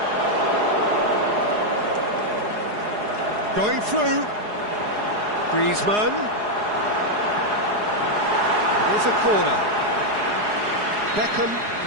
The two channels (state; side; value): late; left; 4.8 ms